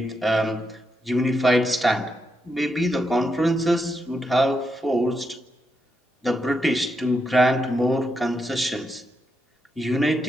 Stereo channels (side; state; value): both; normal; correlation 0.83